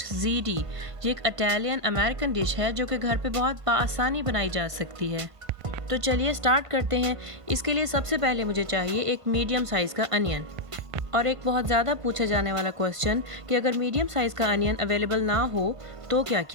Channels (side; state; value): left; late; 1.5 ms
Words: ज़ीडी। ये एक इटालियन अमेरिकन डिश है जो कि घर पे बहुत आसानी बनाई जा सकती है। तो चलिए स्टार्ट करते हैं। इसके लिए सबसे पहले मुझे चाहिए एक मीडियम साइज़ का अनियन। और एक बहुत ज़्यादा पूछा जाने वाला क्वेश्चन कि अगर मीडियम साइज़ का अनियन अवेलेबल ना हो तो क्या